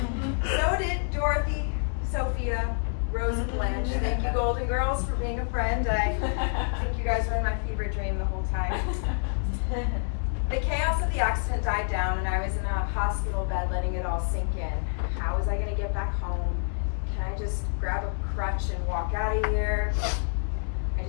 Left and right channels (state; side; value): silent; right; digital silence